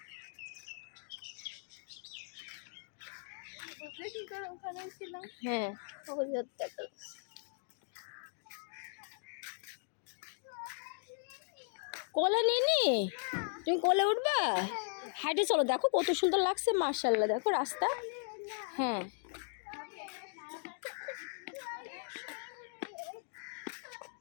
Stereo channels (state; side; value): silent; right; digital silence